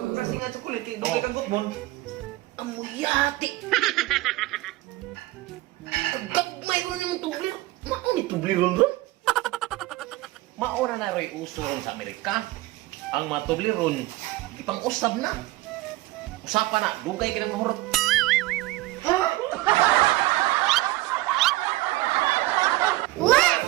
Kasi nga chocolate, hindi ka kang gutmon. Amuyati. Gagmay ko na yung tublir. Mao ni tubliron ron. Maura na ro'y uso ron sa Amerika. Ang mga tubliron, ipang usab na. Usapan na, dugay ka ng mahurot.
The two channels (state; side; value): quieter; left; 18.9 dB